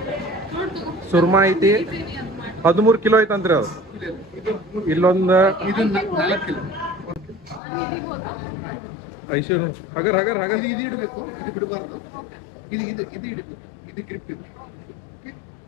ಸುರ್ಮಾ ಐತಿ 13 ಕಿಲೋ ಐತಂತ್ರಿ ಅದು ಇಲ್ಲೊಂದು ಐಶ್ವರ್ ಹಗರ್ ಹಗರ್ ಹಗರ್ ಇದು ಇಡಬೇಕು, ಇದು ಬಿಡಬಾರ್ದು. ಇದು ಇದು ಇದು ಇಡಬೇಕು, ಇದು ಗ್ರಿಪ್ ಇದೆ.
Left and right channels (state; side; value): drops out; right; at 7.6 s